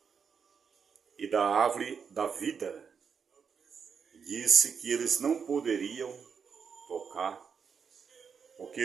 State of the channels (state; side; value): quieter; left; 6.4 dB